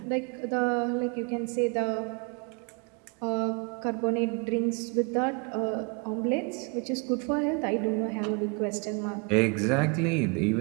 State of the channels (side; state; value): left; quieter; 33.2 dB